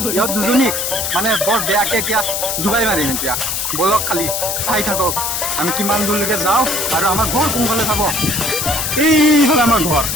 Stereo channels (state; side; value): noise; left; hiss, 1 dB below the sound